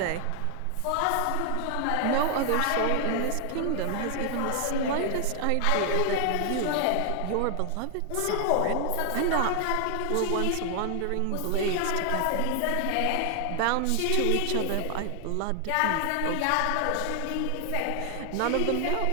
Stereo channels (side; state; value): both; different; correlation 0.00